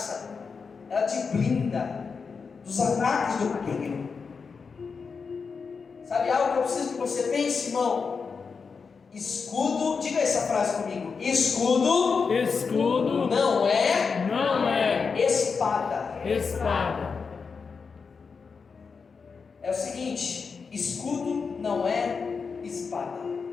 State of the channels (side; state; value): right; quieter; 5.3 dB